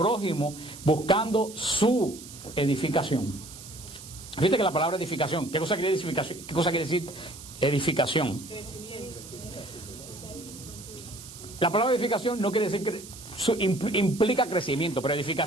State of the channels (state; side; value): noise; right; hiss, 15 dB below the sound